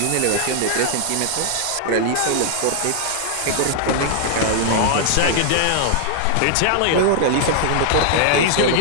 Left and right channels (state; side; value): different; both; correlation -0.01